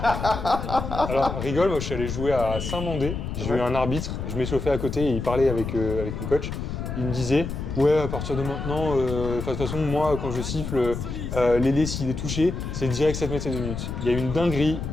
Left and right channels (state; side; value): noise; left; rumble, 5 dB below the sound